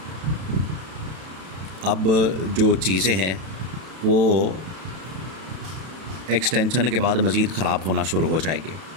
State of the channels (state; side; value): late; left; 32 ms